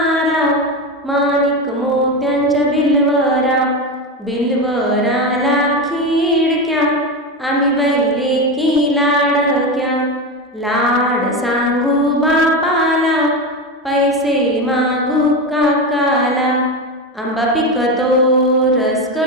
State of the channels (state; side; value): normal; both; correlation 0.18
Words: माणिक मोत्यांच्या बिलवरा. बिलवराला खिडक्या, आम्ही बैले की लाडक्या. लाड सांगू बापाला, पैसे मागू काकाला. आंबा पिकतो, रस